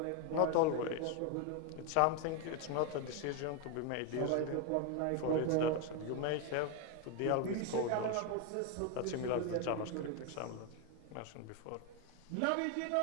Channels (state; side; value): different; both; correlation 0.01